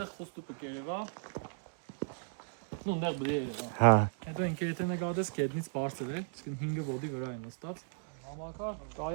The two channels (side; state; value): left; silent; digital silence